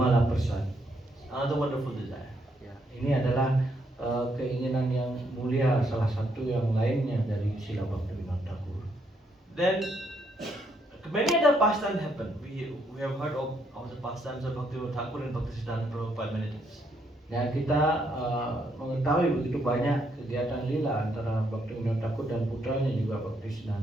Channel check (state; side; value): normal; both; correlation 0.74